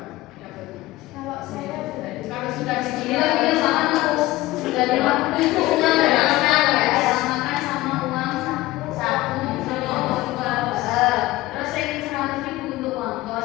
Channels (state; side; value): quieter; right; 17.9 dB